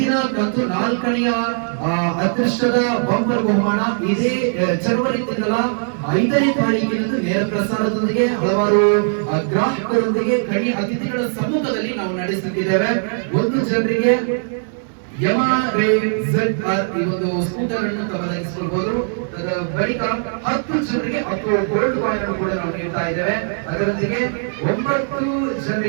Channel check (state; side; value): silent; left; 66 dB below the other